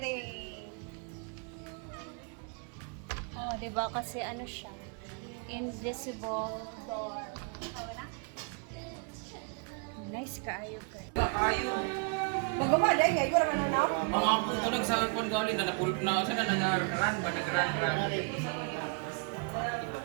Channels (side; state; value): left; quieter; 36.9 dB